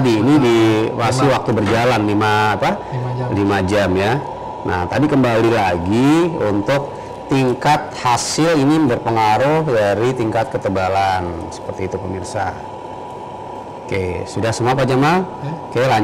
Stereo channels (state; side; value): identical; both; correlation 1.00